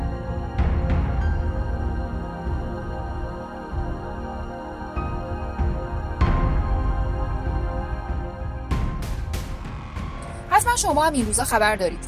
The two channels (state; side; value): identical; both; correlation 1.00